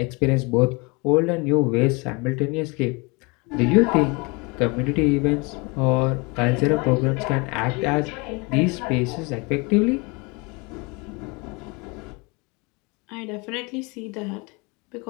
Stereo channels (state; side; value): quieter; right; 28.4 dB